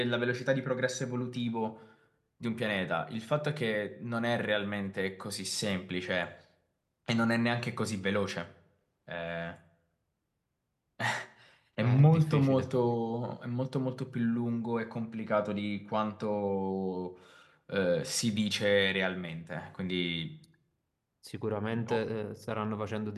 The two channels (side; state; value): both; identical; correlation 1.00